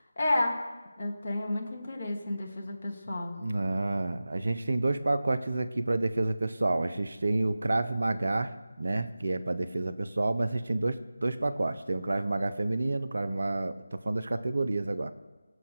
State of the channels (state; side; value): inverted; both; correlation -0.95